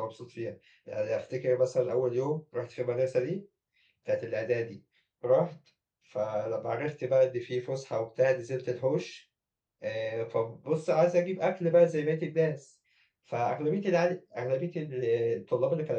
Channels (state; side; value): identical; both; correlation 1.00